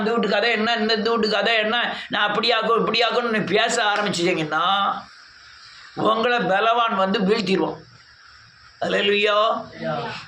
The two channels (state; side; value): identical; both; correlation 1.00